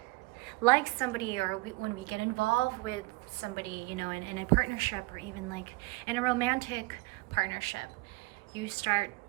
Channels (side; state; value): left; quieter; 23.9 dB